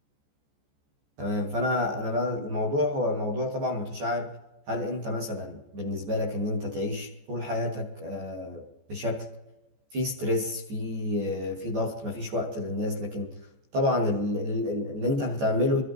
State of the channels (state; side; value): late; left; 14 ms